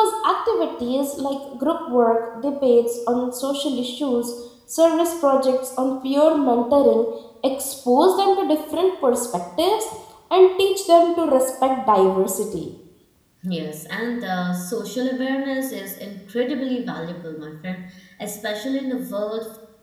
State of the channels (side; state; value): both; identical; correlation 1.00